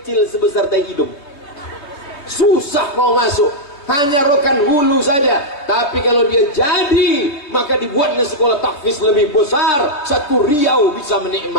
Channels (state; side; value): late; right; 3.3 ms